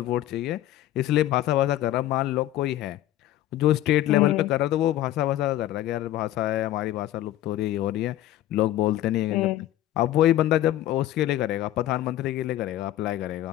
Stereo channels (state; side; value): quieter; right; 13.8 dB